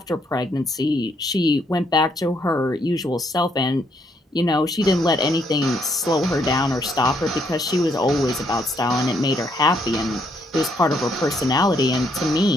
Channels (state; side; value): normal; both; correlation 0.72